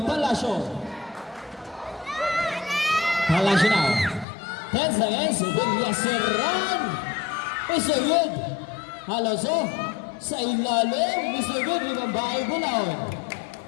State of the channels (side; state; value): right; drops out; at 4.2 s